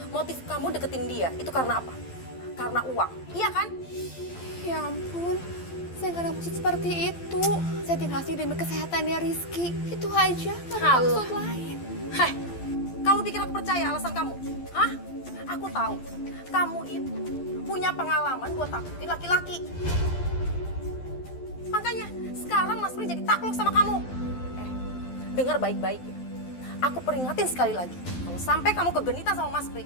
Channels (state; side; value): late; right; 12 ms